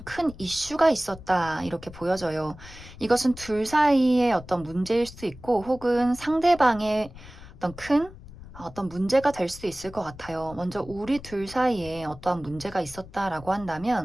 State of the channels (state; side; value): noise; left; rumble, 17 dB below the sound